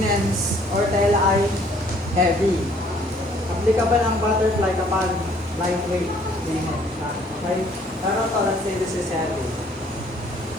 or tela ay heavy. Applicable ang butterfly kapag lightweight linen. Okay? Pero to, let's say this is heavy.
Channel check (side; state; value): both; normal; correlation 0.60